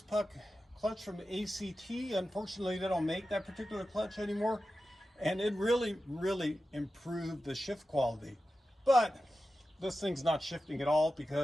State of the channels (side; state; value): both; normal; correlation 0.93